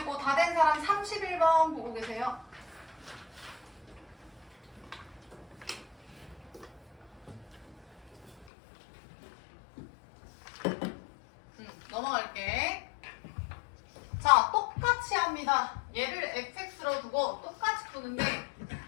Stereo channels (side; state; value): right; drops out; at 8.5 s